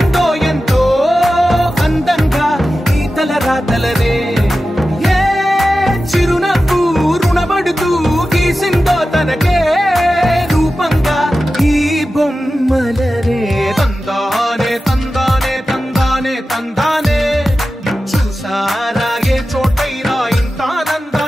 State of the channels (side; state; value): both; normal; correlation 0.94